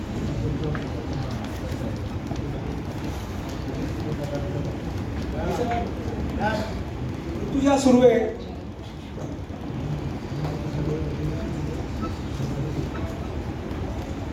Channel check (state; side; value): identical; both; correlation 1.00